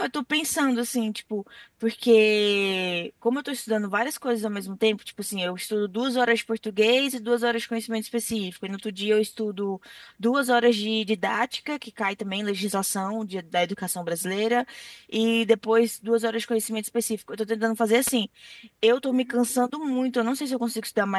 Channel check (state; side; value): identical; both; correlation 1.00